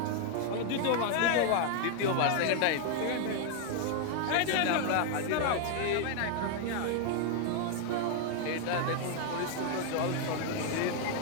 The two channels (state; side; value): different; both; correlation 0.00